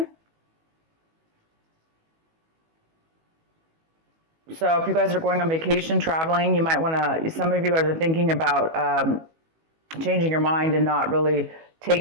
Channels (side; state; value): left; late; 18 ms